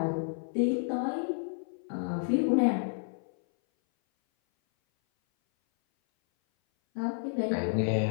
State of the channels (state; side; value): silent; right; 58 dB below the other